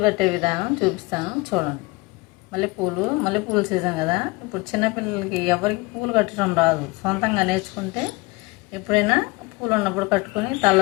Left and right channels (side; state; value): right; quieter; 24.2 dB